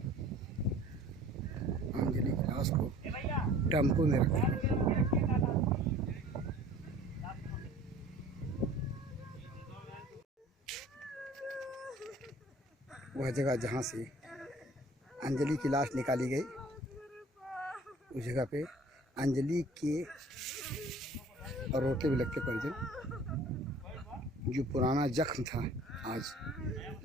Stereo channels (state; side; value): normal; both; correlation 0.48